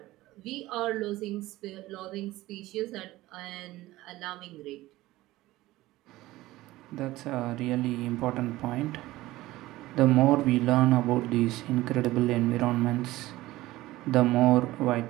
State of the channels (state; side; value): quieter; left; 17.4 dB